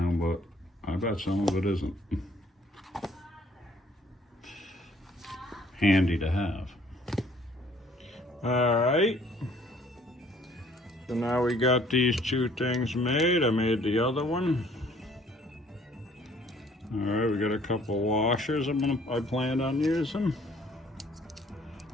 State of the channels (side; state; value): both; normal; correlation 0.59